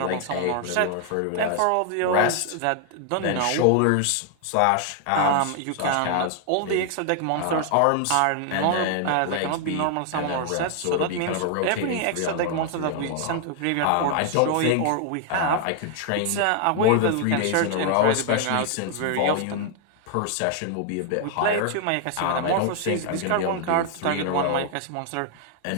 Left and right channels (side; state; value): both; different; correlation 0.00